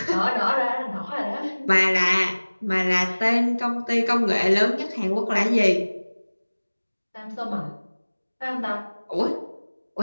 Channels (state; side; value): inverted; both; correlation -1.00